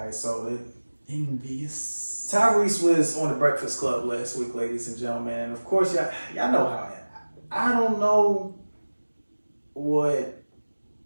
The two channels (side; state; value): both; inverted; correlation -1.00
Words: So Envious. Tyrese was on the Breakfast Club last week, ladies and gentlemen, and of course y'all know how I don't know what